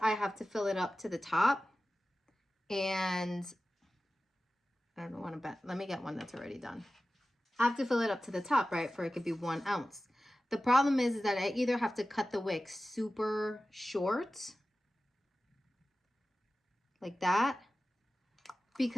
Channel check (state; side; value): normal; both; correlation 0.95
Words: have to fill it up to the top, and I don't want to bet. Let me get one that's already done. I have to fill it up to the top, right? For it could be 1 ounce. The problem is that I either have to cut the wick super short, like that,